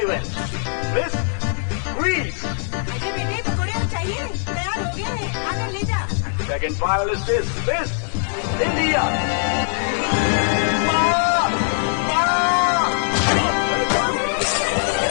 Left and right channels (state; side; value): silent; right; 65 dB below the other